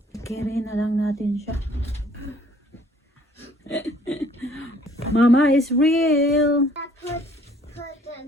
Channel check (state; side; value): normal; both; correlation 0.58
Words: Carry na lang natin siya. Mama is real.